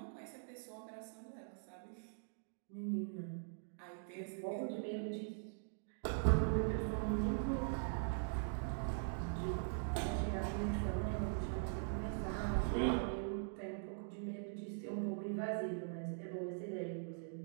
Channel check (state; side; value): silent; left; digital silence